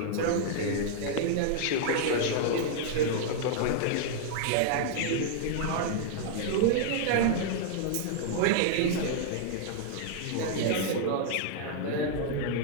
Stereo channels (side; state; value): both; different; correlation -0.01